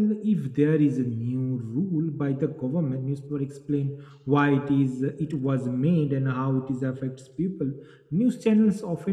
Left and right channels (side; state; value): both; identical; correlation 1.00